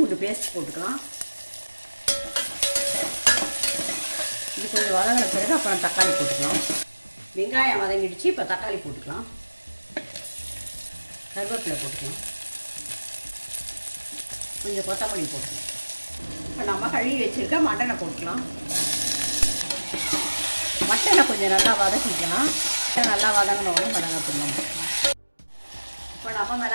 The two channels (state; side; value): inverted; both; correlation -1.00